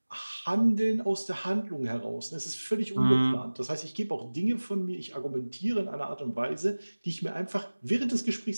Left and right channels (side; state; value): both; inverted; correlation -1.00